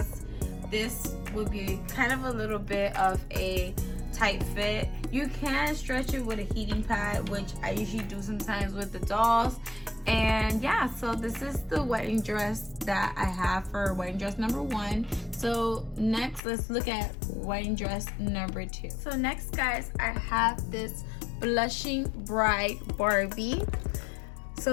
this would be kind of a little bit of a tight fit. You can stretch it with a heating pad, which I usually do sometimes with the dolls. And yeah, so this is the wedding dress that I have for wedding dress number 1. So next, let's look at wedding dress number 2. So next, guys, I have this blushing bride Barbie.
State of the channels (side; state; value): right; drops out; at 16.4 s